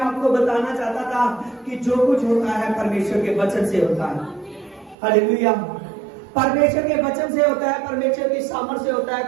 बताना चाहता था कि जो कुछ होता है परमेश्वर के वचन से होता है। हालेलुया। परमेश्वर के वचन से होता है, परमेश्वर की सामर्थ से होता है,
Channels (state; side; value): drops out; left; at 5.0 s